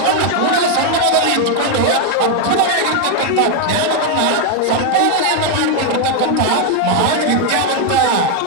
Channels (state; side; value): different; both; correlation 0.01